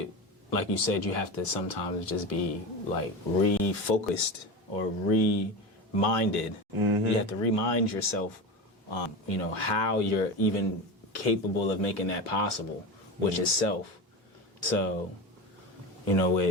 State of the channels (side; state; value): both; normal; correlation 0.25